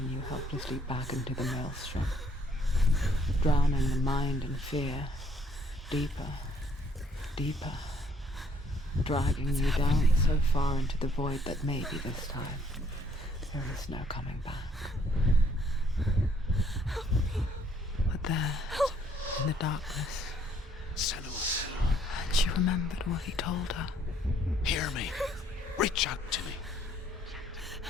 you helplessly back into the maelstrom, drowning the mind in fear, deeper, deeper, dragging you down so far into the void that maybe this time there is no coming back. But there, in the darkness, Senua, and she remembered what he told her. hear me. Reach out to me.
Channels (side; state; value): both; normal; correlation 0.64